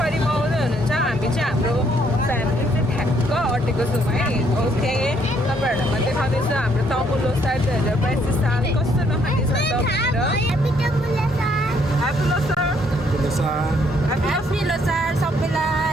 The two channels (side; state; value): both; normal; correlation 0.68